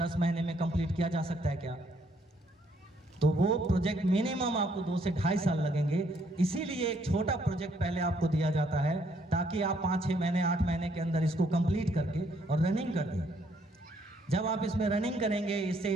महीने में कंप्लीट किया जा सकता है क्या? तो वो प्रोजेक्ट मिनिमम आपको 2 से 2.5 साल लगेंगे। इसीलिए एक छोटा प्रोजेक्ट पहले आपको दिया जाता है, ताकि आप 5-6 महीने 8 महीने के अंदर इसको कंप्लीट करके और रनिंग कर दें। जब आप इसमें रनिंग करेंगे, इससे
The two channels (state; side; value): normal; both; correlation 0.69